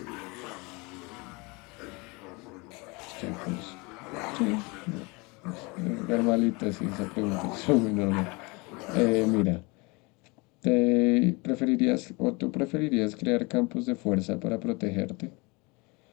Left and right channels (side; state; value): right; quieter; 27.1 dB